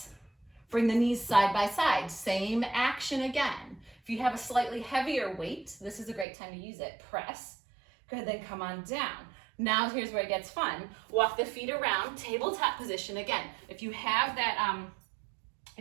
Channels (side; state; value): left; drops out; at 6.2 s